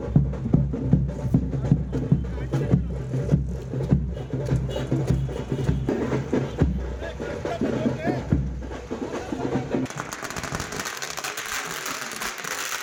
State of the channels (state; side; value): identical; both; correlation 1.00